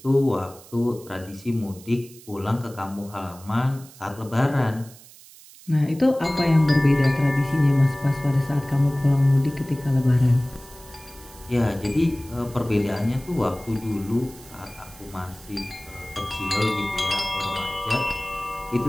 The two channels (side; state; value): right; noise; hiss, 21 dB below the sound